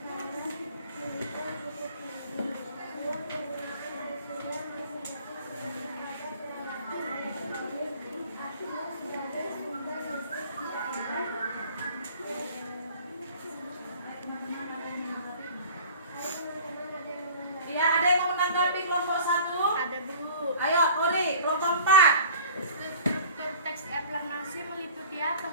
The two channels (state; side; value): inverted; both; correlation -0.46